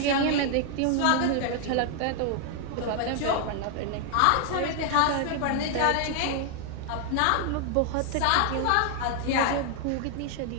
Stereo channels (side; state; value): both; different; correlation 0.00